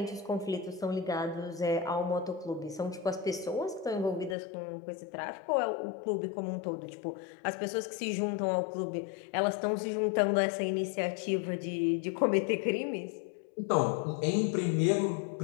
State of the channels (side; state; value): right; drops out; at 4.4 s